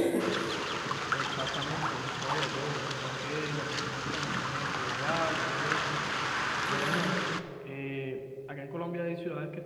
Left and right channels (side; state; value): both; identical; correlation 1.00